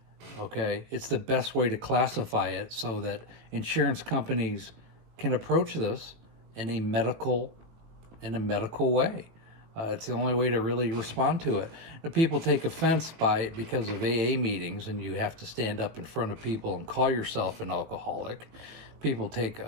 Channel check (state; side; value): late; left; 18 ms